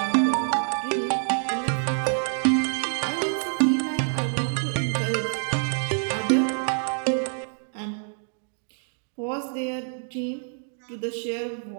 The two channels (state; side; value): silent; left; 61 dB below the other